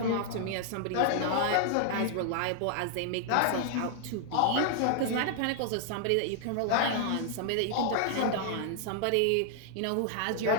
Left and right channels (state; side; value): different; both; correlation 0.00